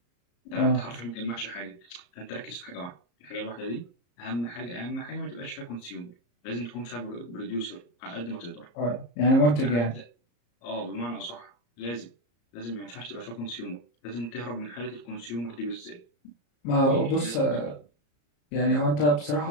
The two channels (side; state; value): right; late; 34 ms